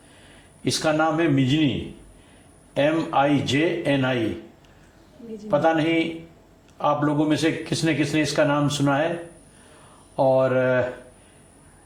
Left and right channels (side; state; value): both; identical; correlation 1.00